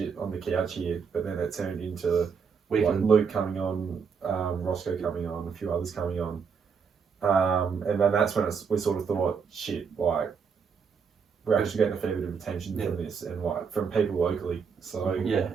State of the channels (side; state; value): left; quieter; 6.1 dB